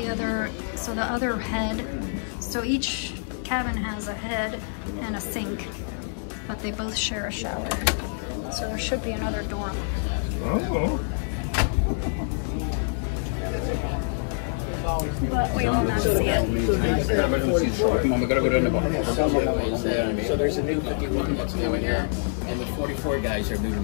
other, so the other head. So each cabin has a head and a sink, but they both share a shower. So there should be another door. Oh. But we will not see it. So there's a new 51 that's new in here, and the 44 guys are moving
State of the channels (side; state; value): right; silent; 61 dB below the other